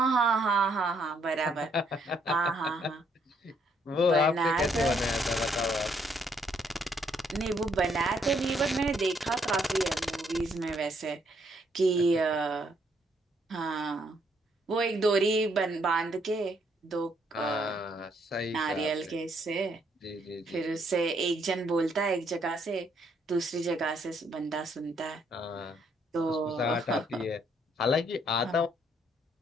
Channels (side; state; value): both; normal; correlation 0.70